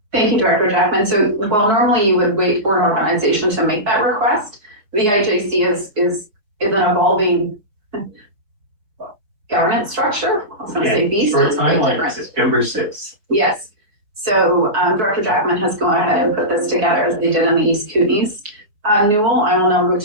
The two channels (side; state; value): left; late; 4.8 ms